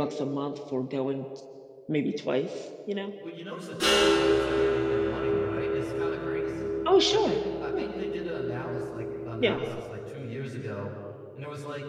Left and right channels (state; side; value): identical; both; correlation 1.00